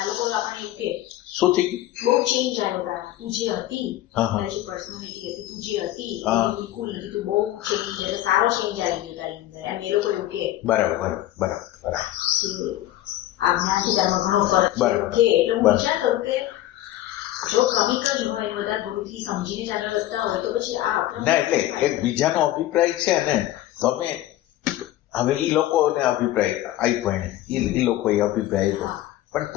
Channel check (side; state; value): right; quieter; 14.4 dB